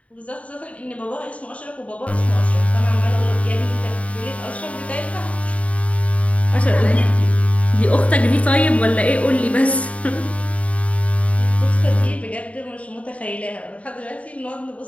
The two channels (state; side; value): late; right; 0.066 ms